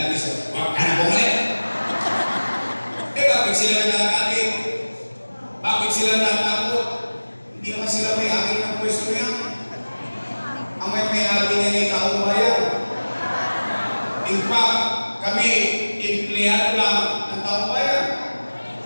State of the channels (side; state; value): both; inverted; correlation -1.00